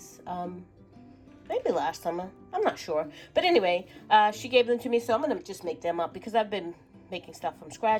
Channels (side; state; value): both; identical; correlation 1.00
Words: maybe last summer, I'm not sure, but anyway, she gave them to me, so I'm gonna just make them up because I've been making stuff from